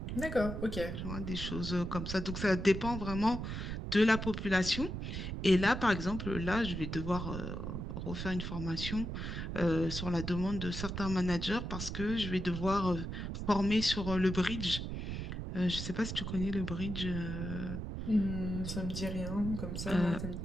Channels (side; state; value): right; noise; rumble, 5 dB below the sound